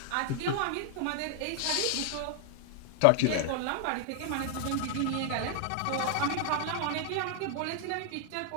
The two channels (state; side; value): different; both; correlation 0.00